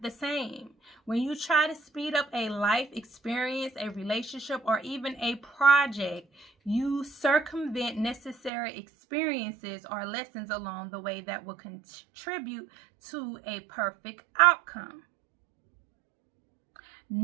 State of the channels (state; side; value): drops out; left; at 8.5 s